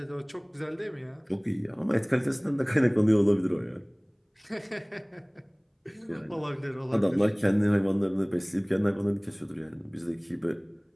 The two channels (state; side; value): identical; both; correlation 1.00